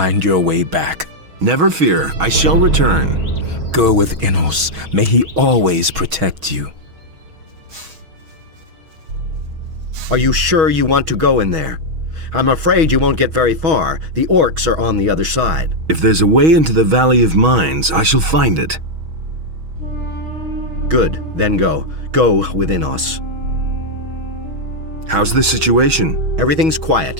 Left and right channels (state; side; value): late; left; 6.2 ms